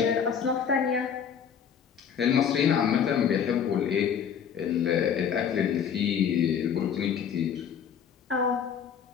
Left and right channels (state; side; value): quieter; right; 7.7 dB